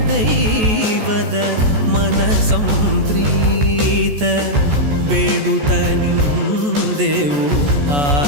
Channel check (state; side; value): late; left; 14 ms